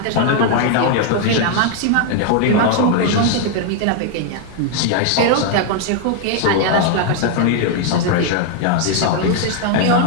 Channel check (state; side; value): different; both; correlation 0.00